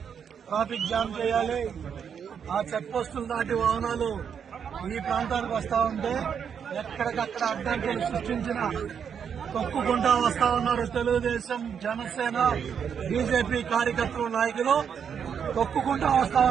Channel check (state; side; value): quieter; left; 7.5 dB